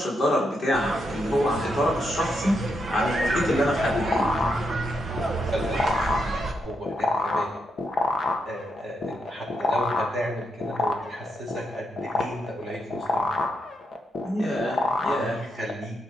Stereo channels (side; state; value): both; normal; correlation 0.81